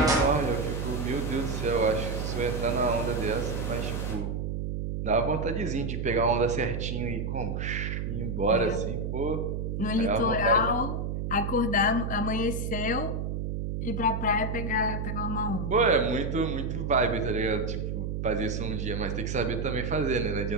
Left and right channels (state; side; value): noise; right; hum, 2 dB below the sound